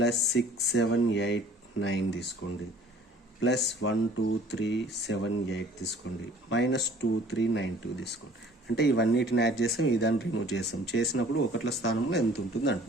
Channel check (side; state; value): both; normal; correlation 0.51